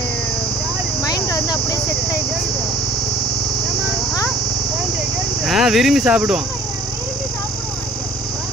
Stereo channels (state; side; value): normal; both; correlation 0.51